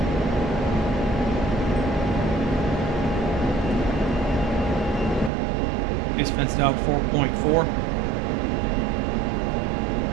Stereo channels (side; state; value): left; drops out; at 5.3 s